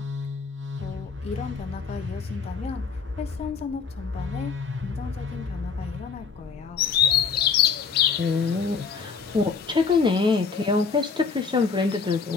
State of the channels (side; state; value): right; quieter; 5.5 dB